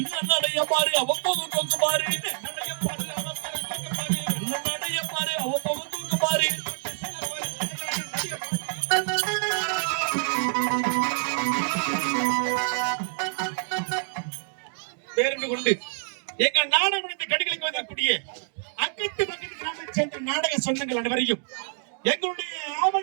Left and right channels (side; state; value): left; silent; digital silence